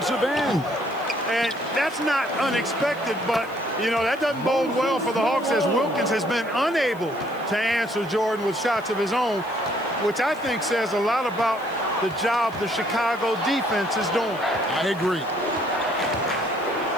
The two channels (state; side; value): noise; right; hiss, 25 dB below the sound